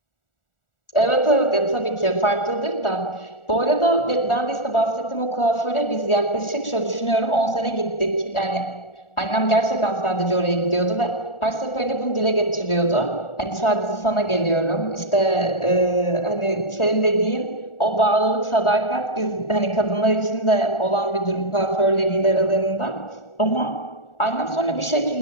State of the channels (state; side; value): late; right; 1.4 ms